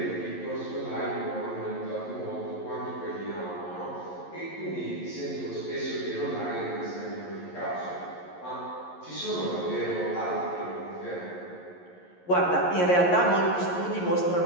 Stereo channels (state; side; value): late; right; 11 ms